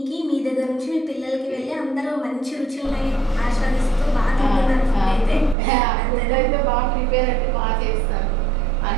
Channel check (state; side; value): drops out; left; at 5.6 s